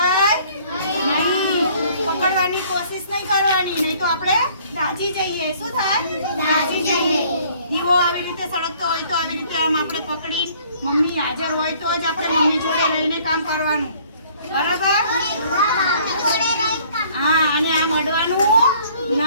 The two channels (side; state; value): both; inverted; correlation -0.57